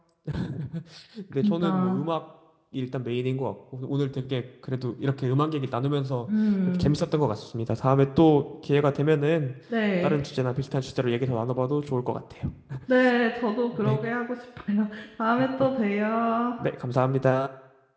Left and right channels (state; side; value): identical; both; correlation 1.00